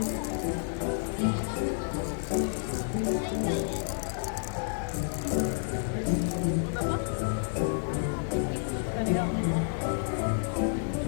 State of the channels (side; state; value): right; silent; digital silence